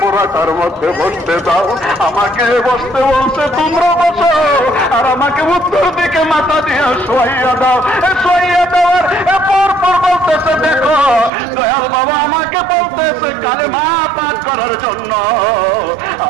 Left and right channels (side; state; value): left; drops out; at 11.3 s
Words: মধ্যে বসতে দাও। আমাকে বসতে বলছে, তোমরা বসো, আর আমাকে উত্তর দিকে মাথা দিয়ে শোয়াইয়া দাও। শোয়াইয়া দেওয়ার পর বলতেছে, দেখো দয়াল বাবা আমাকে বলতেছে কালেমা পাঠ করার জন্য।